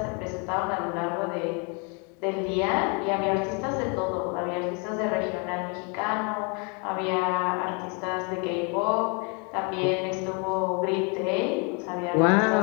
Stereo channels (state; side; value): quieter; right; 34.6 dB